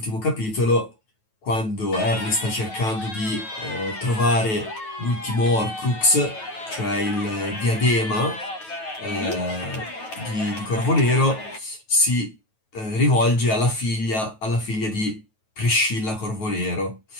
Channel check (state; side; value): late; right; 9.2 ms